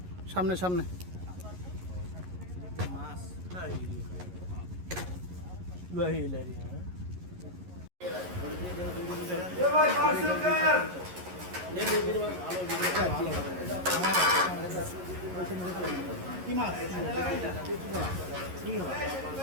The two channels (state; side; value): late; left; 11 ms